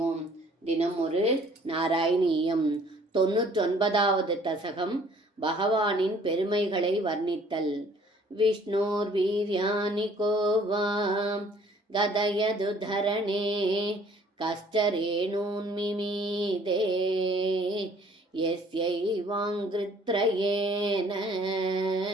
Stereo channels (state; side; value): normal; both; correlation 0.57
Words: தினம் ஒரு நாராயணீயம். 99வது தசகம் பகவானின் பெருமைகளை வர்ணித்தல். விஷ்ணோர் வீர்யானி கோவாம் கதயது தரணே கஷ்டரேணூன் மிமீதே யஸ்யைவாங்கிருத்ரயேன